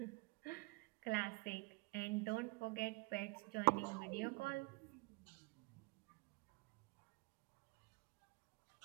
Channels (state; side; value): quieter; left; 25.4 dB